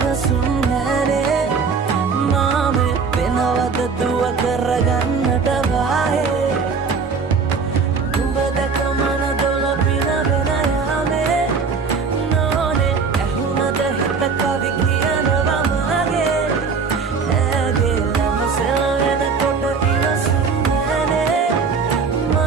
නැනේ මාමේ වෙනවද දුව කරගන්නට වාහේ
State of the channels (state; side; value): quieter; left; 5.2 dB